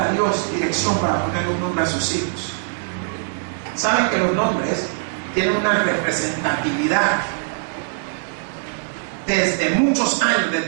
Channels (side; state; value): left; silent; 59 dB below the other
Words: Dios dirección para poner un nombre a sus hijos. Saben que los nombres tienen una representatividad. Desde muchos años,